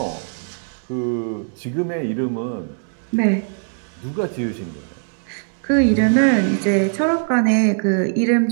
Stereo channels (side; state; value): left; silent; digital silence